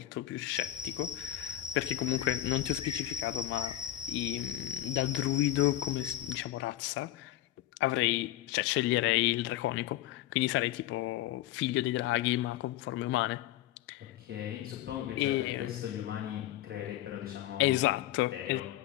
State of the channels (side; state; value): right; quieter; 13.9 dB